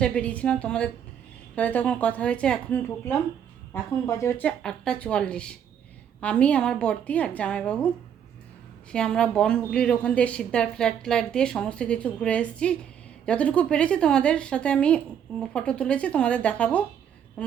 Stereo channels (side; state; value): left; quieter; 8.7 dB